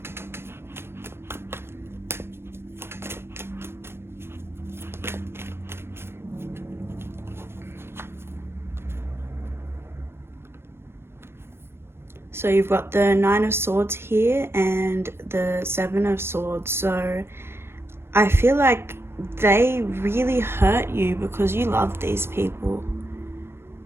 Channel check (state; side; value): late; left; 0.12 ms